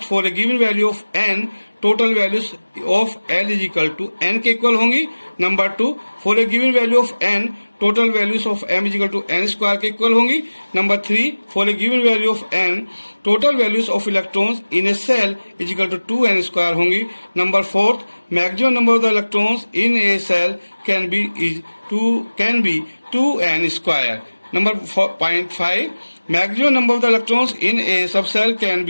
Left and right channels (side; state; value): both; inverted; correlation -1.00